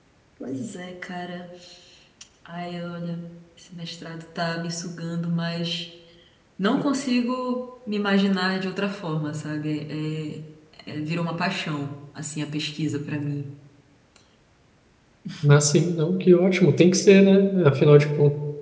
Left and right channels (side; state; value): both; identical; correlation 1.00